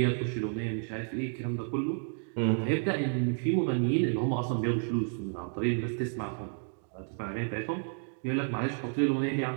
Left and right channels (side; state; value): left; silent; 57 dB below the other